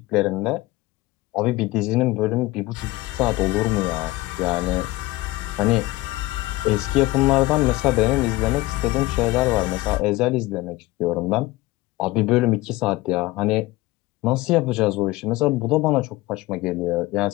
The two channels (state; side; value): quieter; right; 19.5 dB